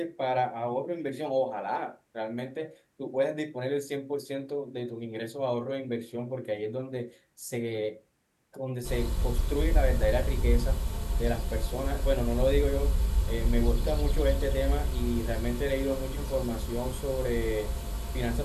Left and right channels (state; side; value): identical; both; correlation 1.00